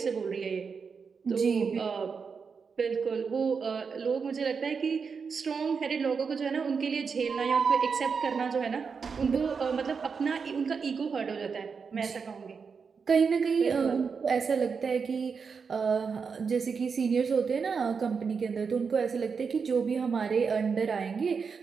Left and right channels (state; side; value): quieter; left; 5.6 dB